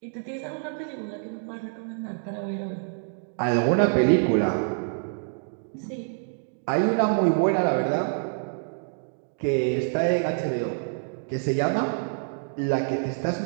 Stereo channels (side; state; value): left; silent; digital silence